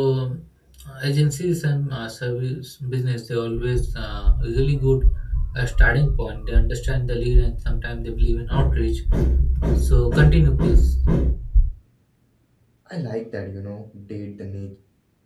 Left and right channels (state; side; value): identical; both; correlation 1.00